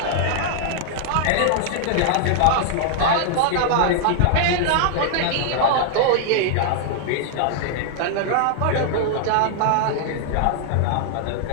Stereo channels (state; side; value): different; both; correlation -0.01